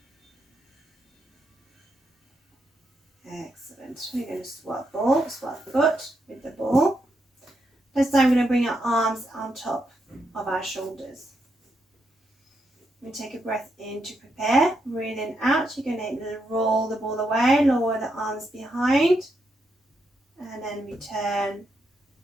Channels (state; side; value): normal; both; correlation 0.81